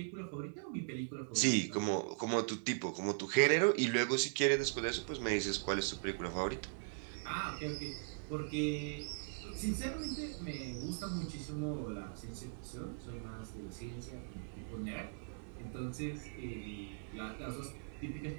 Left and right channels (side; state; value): left; silent; digital silence